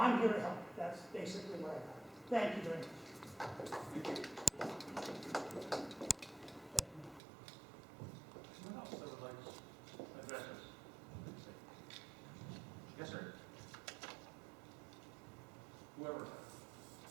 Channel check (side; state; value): left; drops out; at 7.2 s